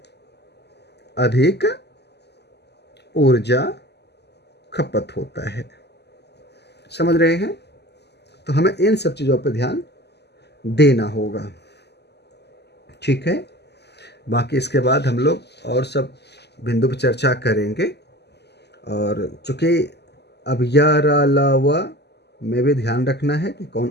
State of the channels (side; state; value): right; late; 0.49 ms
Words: अधिक ऊर्जा खपत होता है। समझ रहे हैं? तो हमें इन सब चीज़ों पर ध्यान देना होगा, ठीक है। बाकी इसके बाद हम लोग और सब बिंदु पर चर्चा करेंगे। और चूँकि अब अलावा में भी ध्यान रखना है कि